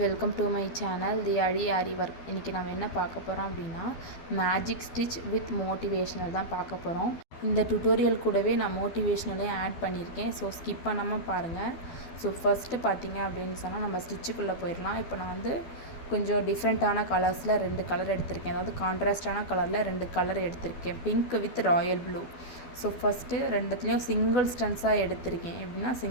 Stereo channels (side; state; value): right; late; 12 ms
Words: to my channel the aarI work. இன்றைக்கி நம்ம என்ன பார்க்க போகிறோம் அப்படின்னா மேஜிக் ஸ்டிச் வித் மோட்டிவேஷ்னல் தான் பார்க்க போகிறோம். இந்த டுட்டோரியல் கூடவே நான் மோட்டிவேஷ்னலையும் ஆட் பண்ணியிருக்கேன். ஸோ ஸ்கிப் பண்ணாமல் பாருங்கள். ஸோ ஃபஸ்ட்டு பார்த்தீங்க அப்படின்னு சொன்னால் நம்ம ஸ்டிச்சுக்குள்ளே போயிடலாம். இப்போ நான் கொஞ்சம் டிஃப்ரெண்ட்டான கலர்ஸில் 2 கலர் எடுத்திருக்கேன். அதாவது கான்ட்ராஸ்டான கலரில் 2 கலர் எடுத்திருக்கேன், pink with royal blue. So first ரெண்டுத்துலேயும் சிங்கிள் ஸ்டன்ஸாக எடுத்திருக்கேன். எப்படின்னா